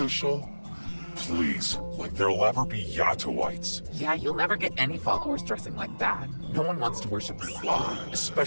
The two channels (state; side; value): inverted; both; correlation -1.00